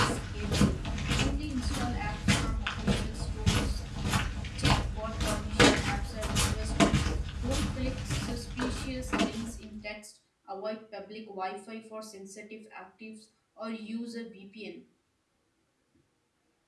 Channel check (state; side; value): identical; both; correlation 1.00